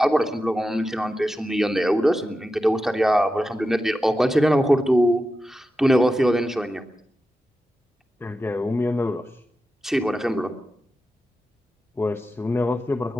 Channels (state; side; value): normal; both; correlation 0.91